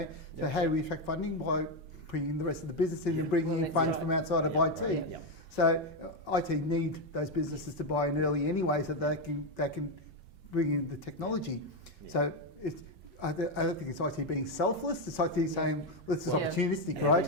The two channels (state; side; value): normal; both; correlation 0.06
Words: so how do we attract funding? By bringing the rest of the business in and bringing in funds from outside of IT. So IT need those businesses to buy in early anyway, so they can bring in the technology. Yeah. So I don't think it's IT being selfless. It's IT saying, well, this is Well, opportunistic,